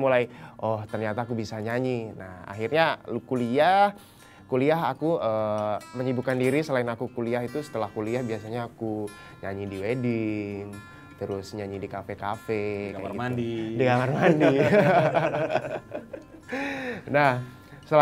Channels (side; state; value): both; identical; correlation 1.00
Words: oh ternyata aku bisa nyanyi. Nah akhirnya kuliah aku menyibukkan diri. Selain aku kuliah itu, setelah kuliah biasanya aku nyanyi di wedding, terus nyanyi di kafe-kafe, di kamar mandi. Di kamar mandi. Nah,